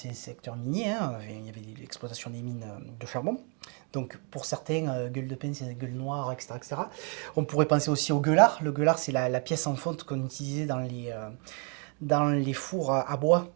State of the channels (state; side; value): quieter; left; 37.9 dB